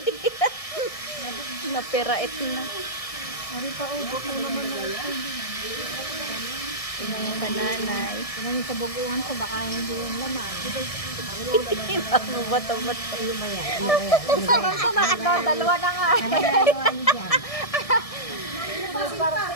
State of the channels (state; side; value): late; right; 1.6 ms